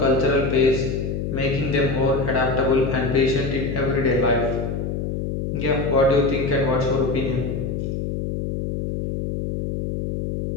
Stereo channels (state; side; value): noise; left; hum, 3 dB below the sound